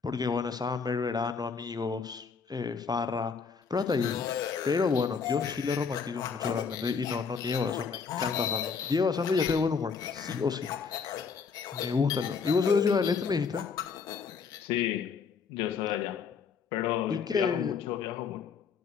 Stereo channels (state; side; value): quieter; right; 5.7 dB